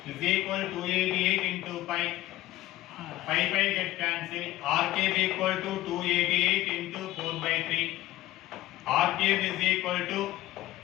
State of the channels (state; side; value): quieter; right; 16.2 dB